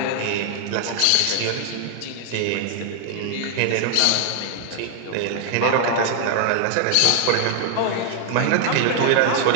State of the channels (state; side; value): different; both; correlation 0.00